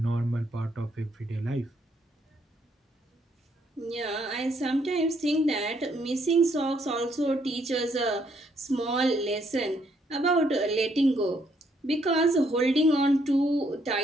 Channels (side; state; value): both; normal; correlation 0.71